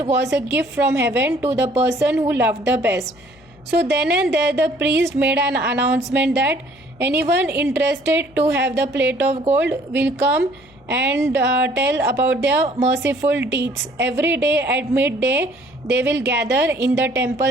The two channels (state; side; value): noise; left; hum, 28 dB below the sound